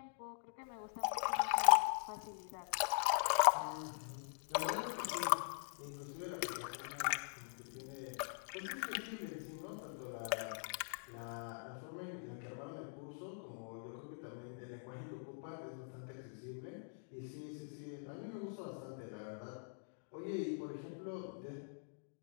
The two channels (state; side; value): silent; right; digital silence